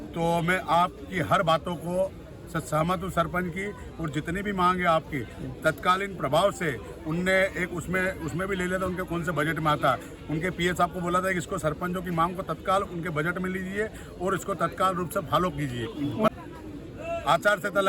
तो मैं आपकी हर बातों को सहमत हूँ सरपंच की, और जितनी भी मांग है आपकी तत्कालीन प्रभाव से उनने एक उसमें भी ले लिया था, उनके कौन से बजट में आता। उनके पीएस आपको बोला था कि इसको सरपंचों की मांग को तत्काल उनके बजट में लीजिए और इसको तत्काल रूप से फॉलो कीजिए। आचार संहिता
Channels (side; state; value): both; identical; correlation 1.00